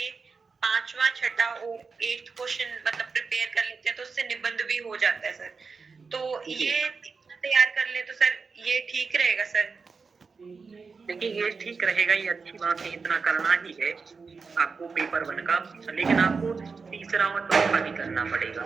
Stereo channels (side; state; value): left; quieter; 4.9 dB